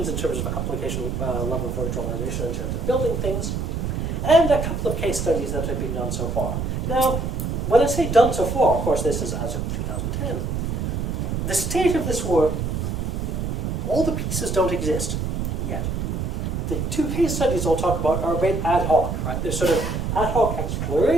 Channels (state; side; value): noise; right; rumble, 2 dB below the sound